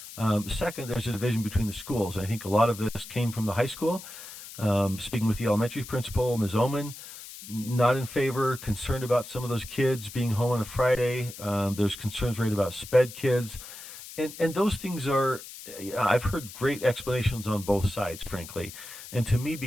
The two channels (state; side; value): noise; left; hiss, 14 dB below the sound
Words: Second, there's a division between the schools. I think a lot of this came from the high school. Speaking with the elementary principal, Ms. Oman, not in favor, concerned about some of those kids being home on a Friday. There's concerns right about sped kids. And those things are, I've heard great explanations on both sides, frankly. And to me,